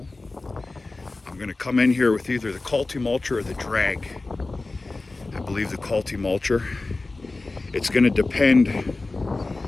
I'm going to come in here with either the Culti-Mulcher or the drag. I believe the Culti-Mulcher. It's going to depend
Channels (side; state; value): right; quieter; 3.3 dB